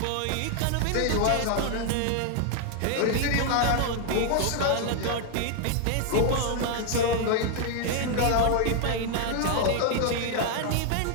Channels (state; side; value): different; both; correlation 0.00